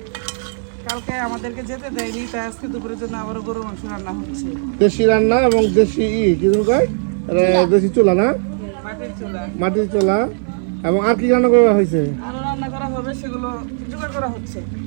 কালকে আমাদেরকে যেতে দেয়নি, তাই আজকে দুপুরের জন্য আবারও গরুর মাংস রান্না হচ্ছে। দেশি রান্না এবং দেশি কি যেন কয়? দেশি চুলা না, মাটির চুলা। মাটির চুলা। এবং আর কি রান্না করা হয়েছে? আরো রান্না করা হবে, সেগুলো জোগাড় করা হচ্ছে।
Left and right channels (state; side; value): silent; left; 58 dB below the other